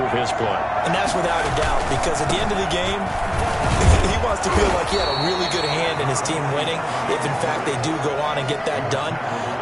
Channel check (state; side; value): identical; both; correlation 1.00